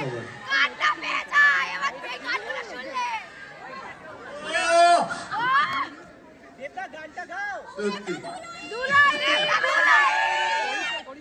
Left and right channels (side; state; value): both; identical; correlation 1.00